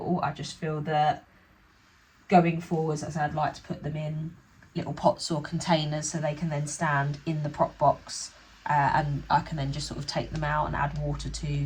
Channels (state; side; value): identical; both; correlation 1.00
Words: I just feel that going forwards, as I'd like to put them in little pots or containers so they can then stand in the prop box, and I can then just sort of take them out and add water to